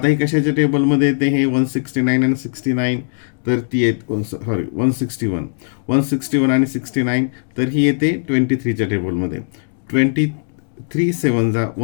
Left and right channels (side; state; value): right; silent; digital silence